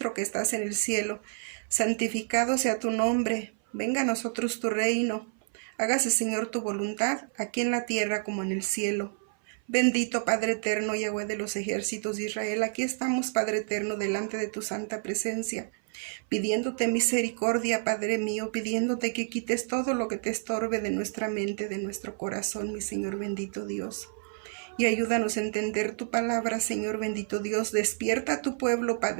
que estás en el cielo, santificado sea tu nombre, venga a nosotros tu reino, hágase Señor tu voluntad, aquí en la tierra como en el cielo. Bendito Padre eterno, Yahweh de los ejércitos de Israel, aquí estamos, Padre eterno, delante de tu santa presencia, pidiéndote misericordia, Padre mío, pidiéndote que quites todo lo que te estorbe de nuestra mente, de nuestro corazón, mi Señor bendito Dios. Y ayúdanos a entender tu palabra, Señor bendito Dios. Despierta a tu pueblo,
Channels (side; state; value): left; silent; 57 dB below the other